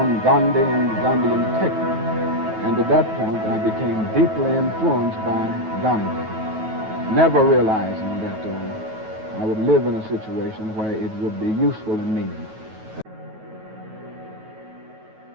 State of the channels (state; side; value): late; left; 9.3 ms